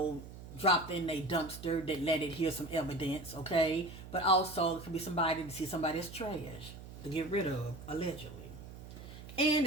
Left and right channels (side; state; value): right; noise; hum, 14 dB below the sound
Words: dropped in a dumpster that let it hear some evidence, okay? But also, it could be somebody to see somebody as trash to get rid of, allegedly. And